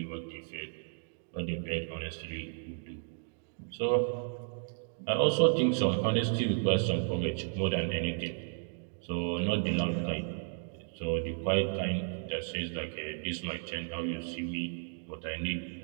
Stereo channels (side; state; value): left; silent; digital silence